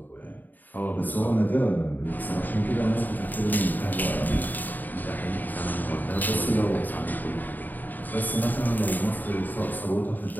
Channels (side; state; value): right; late; 0.087 ms